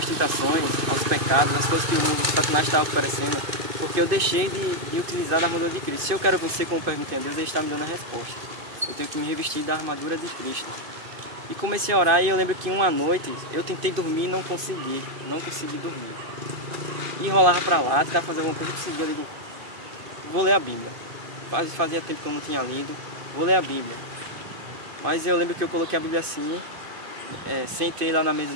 tentações, aos pecados, às coisas que o mundo, o Satanás está oferecendo, porque eu deixei de utilizar a armadura de Cristo. Se eu quero vencer, como perguntei a Deus, Ele está me dando a resposta. Eu tenho que me revestir da armadura de Cristo. E comecei a orar, e eu lembro que uma noite eu tentei dormir e não consegui dormir. E rolava para lá, tentava fazer alguma coisa, eu digo, vou ler a Bíblia. Fazia tempo que eu não tinha lido, vou ler a Bíblia. Mas eu lembro que eu coloquei a Bíblia assim, sentei lá na mesa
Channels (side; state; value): left; late; 2.5 ms